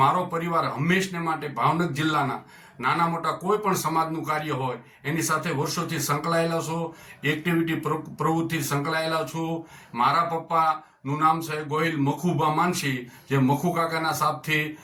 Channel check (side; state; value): both; identical; correlation 1.00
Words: મારો પરિવાર હંમેશને માટે ભાવનગર જિલ્લાના નાના મોટા કોઈ પણ સમાજનું કાર્ય હોય એની સાથે વર્ષોથી સંકળાયેલા છું, એક્ટિવિટી પ્રવૃત્તિ સંકળાયેલા છું. મારા પપ્પાનું નામ છે ગોહિલ મખુબા માનસી, જે મખુ કાકાના સાપથી